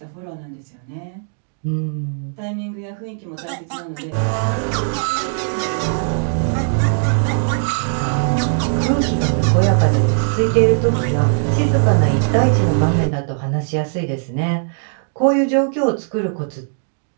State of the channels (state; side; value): silent; left; digital silence